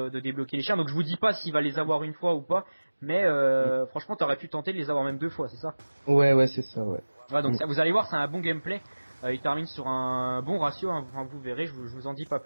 débloquer les chiens. Donc je vous dis pas s'il va les avoir une fois ou pas, mais franchement tu aurais pu tenter de les avoir même 2 fois, c'est ça. Ouais, c'est ça, ouais. Voilà, donc Mm. ça, vous allez voir, c'est un bon gameplay. Il termine sur un bon ratio, hein, enfin, vous verrez, je vous en dis pas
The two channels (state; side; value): inverted; both; correlation -1.00